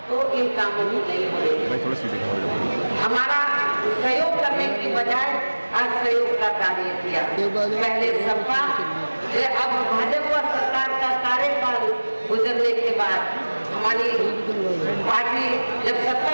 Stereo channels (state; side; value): inverted; both; correlation -1.00